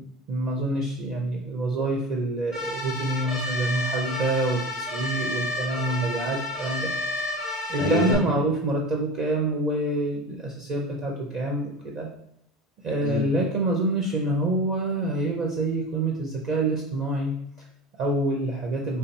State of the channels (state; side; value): normal; both; correlation 0.33